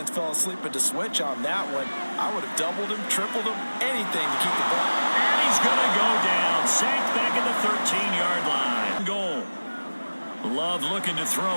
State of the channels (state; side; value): inverted; both; correlation -1.00